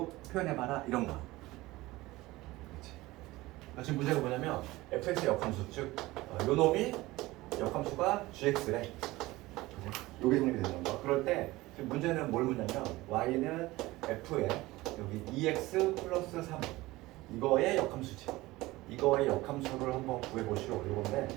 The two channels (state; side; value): quieter; left; 19.2 dB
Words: 표현해봐라 이런 거. 지금 문제가 뭐냐면 fx의 역함수 즉 요놈이 역함수가 gx래. 요게 정립이 되는 거. 그럴 때 지금 문제는 뭘 묻냐면 y는 f에 여기 2x 플러스 3 이거의 역함수지. 이거의 역함수를 한번 구해보시오. 이건데